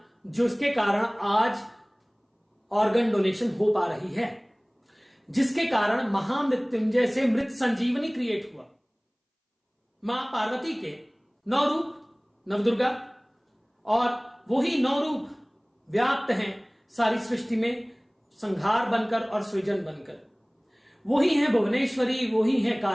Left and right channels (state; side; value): identical; both; correlation 1.00